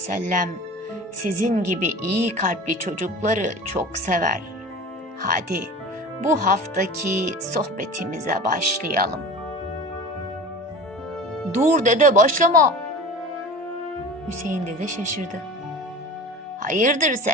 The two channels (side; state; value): both; normal; correlation 0.36